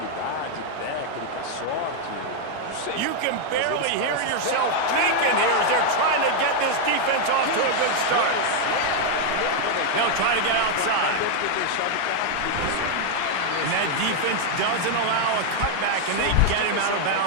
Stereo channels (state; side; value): different; both; correlation 0.00